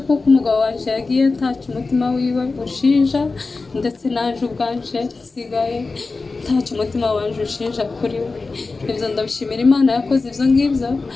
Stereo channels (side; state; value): right; quieter; 3.8 dB